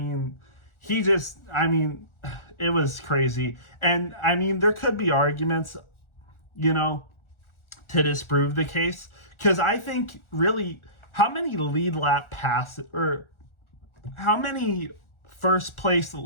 It was crazy. And there could be arguments, to disprove the case. Because I think really, how many lead lap passes or how many first place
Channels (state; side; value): late; right; 1.4 ms